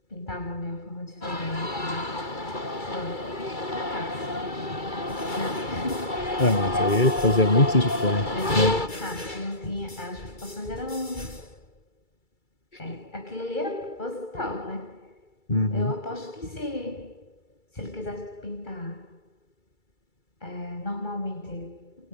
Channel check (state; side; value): late; right; 2.3 ms